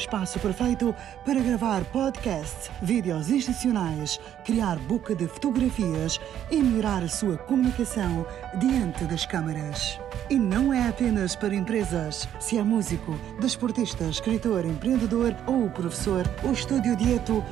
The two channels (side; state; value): left; quieter; 10.5 dB